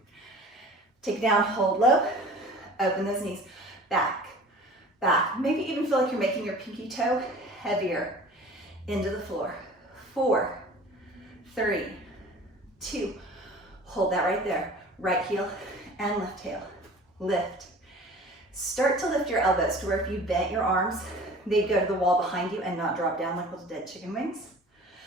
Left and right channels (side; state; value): both; normal; correlation 0.44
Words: Take it down, hold low, open those knees. Back, back. Maybe even feel like you're making your pinky toe heavier into the floor. 4, 3, 2, hold that right there. Right heel and left heel. Lift. Start to lift your elbows to where if you bent your arms, they'd go to the wall behind you and not drop down like little dead chicken wings.